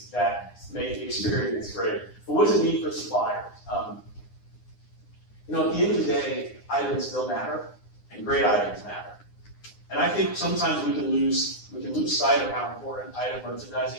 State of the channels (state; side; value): late; right; 9.8 ms